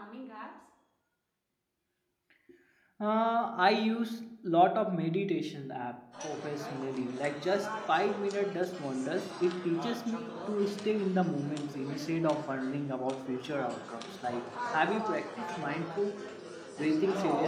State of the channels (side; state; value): both; identical; correlation 1.00